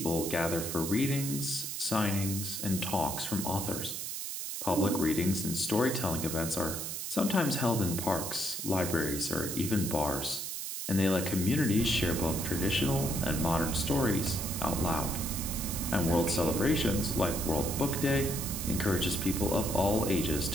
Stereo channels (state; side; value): noise; right; hiss, 5 dB below the sound